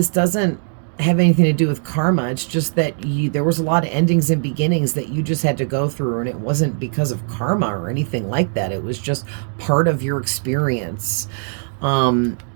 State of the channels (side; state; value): left; silent; digital silence